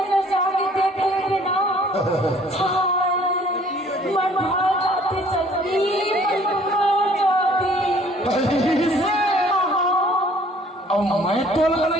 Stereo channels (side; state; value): both; normal; correlation 0.56